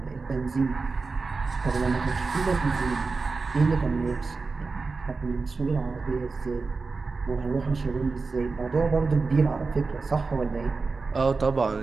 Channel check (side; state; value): left; quieter; 4.2 dB